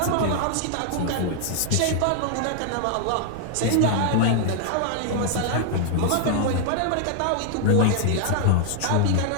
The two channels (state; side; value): different; both; correlation 0.00